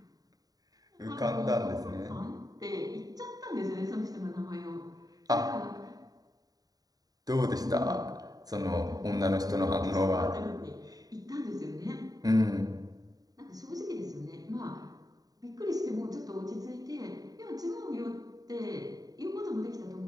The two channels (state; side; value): late; left; 0.18 ms